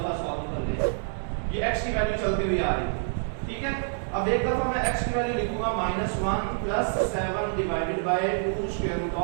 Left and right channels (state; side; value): silent; left; 60 dB below the other